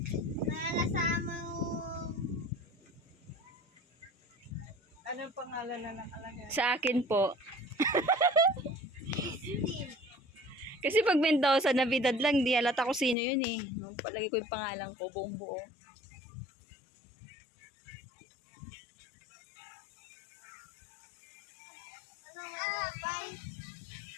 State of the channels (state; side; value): drops out; right; at 13.2 s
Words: Nalasama yung... Anong pangalan na nakalagay? Sa akin po. Steel. Kasi pag Mendoza, Navidad lang, di halata ko sino yun eh. Palagi ko yung pangalan ko, buong buo.